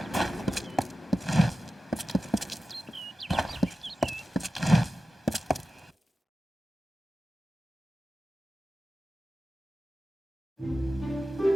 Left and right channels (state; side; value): normal; both; correlation 0.93